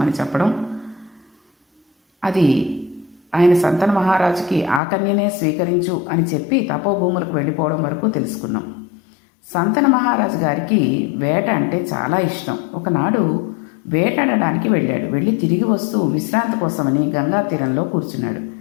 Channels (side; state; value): right; drops out; at 4.8 s